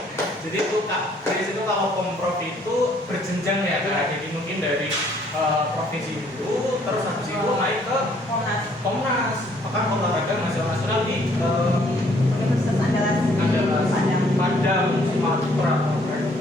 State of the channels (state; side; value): normal; both; correlation 0.63